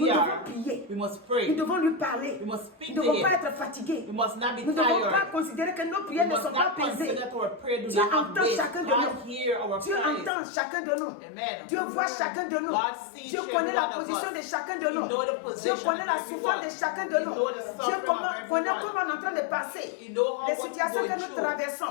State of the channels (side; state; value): right; drops out; at 10.3 s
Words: we devons are, prier. we must Nous pray. devons lui parler. We must Nous speak ne to devons pas Him. être fatigués. We must not be Nous ne devons pas tired. considérer que nos We prières ne must sont pas not pesées. consider that our prayer do Dieu not have entend weight. chacun de God nous. hear our Dieu praise. entend chacun de nous. Amen. Dieu voit chacun de nous. God sees Dieu every connaît la one of position us. de chacun de He nous. know the Dieu position connaît of la everyone. souffrance de chacun de He nous. know the Dieu suffering of connaît everyone. comment on est en train de passer. He know how Les what situations we're que going nous through.